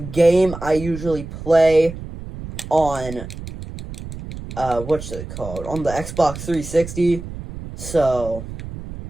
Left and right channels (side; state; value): right; noise; rumble, 11 dB below the sound